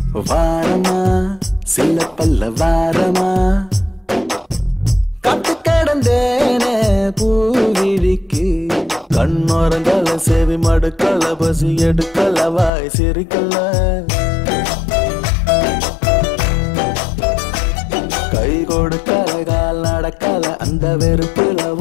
வாரமா சில பல்ல வாரமா கட்டு கிடந்தேனே பூவிழிக்கு கண்ணோரங்கள செவி மடுக்கல பசி எடுக்கல வாய் சிரிக்கல கை கொடுக்கல கால் நடக்கல அந்த வெறுப்புல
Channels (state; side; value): drops out; right; at 12.7 s